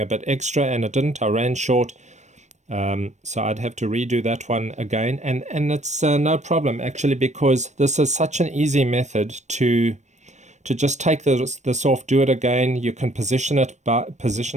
bit extra, and I didn't. I ran short, so I'd have to redo that one again, and it's no problem actually, because this is such an easy method to just take this off, do it again. You can position it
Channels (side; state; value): left; late; 0.34 ms